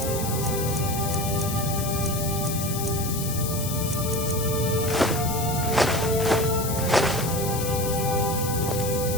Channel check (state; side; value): noise; left; hiss, 6 dB below the sound